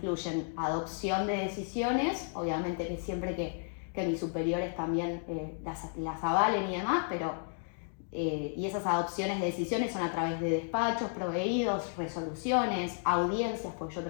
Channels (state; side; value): silent; right; 56 dB below the other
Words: adopción de decisiones, obviamente que siempre que mis superiores también las avalen y demás, pero y esas adopciones de decisiones son a través de despachos, proveídos, resoluciones, audiencias, porque yo